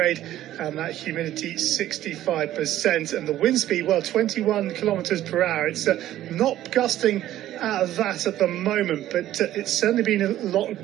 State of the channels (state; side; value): quieter; left; 13.3 dB